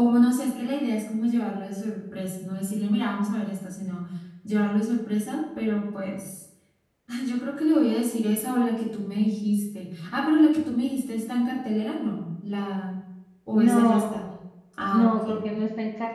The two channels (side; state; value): both; identical; correlation 1.00